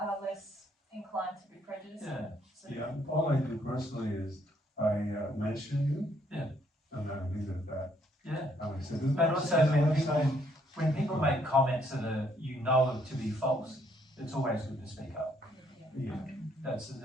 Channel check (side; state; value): both; normal; correlation 0.69